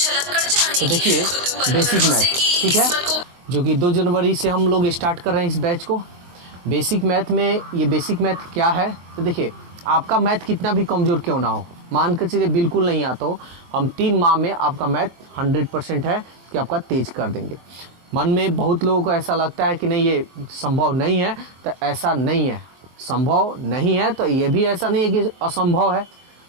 कर जाने की देखिए खुद पर बेसिक भरोसे मैथ, की ठीक है, किस्मत को जो कि 2 जनवरी से हम लोग स्टार्ट कर रहे हैं इस बैच को। बेसिक मैथ में ये बेसिक मैथ क्या है, तो देखिए आपका मैथ कितना भी कमज़ोर क्यों ना हो, मान कर चलिए बिल्कुल नहीं आता हो, हम 3 माह में आपका मैथ 100% है कि आपका तेज कर देंगे। मन में बहुत लोगों को ऐसा लगता है कि नहीं ये संभव नहीं है, तो ऐसा नहीं है, संभव नहीं है तो ये भी ऐसा नहीं है कि असंभव है,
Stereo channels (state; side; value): late; left; 23 ms